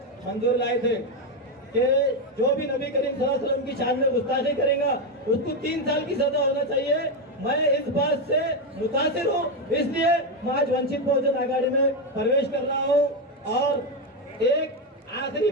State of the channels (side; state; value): both; normal; correlation 0.09